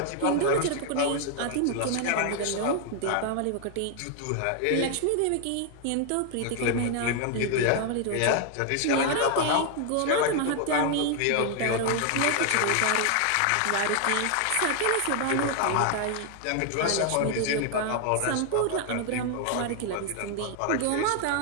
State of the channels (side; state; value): both; different; correlation 0.00